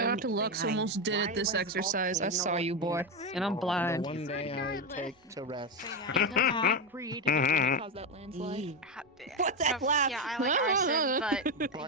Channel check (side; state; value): both; normal; correlation 0.11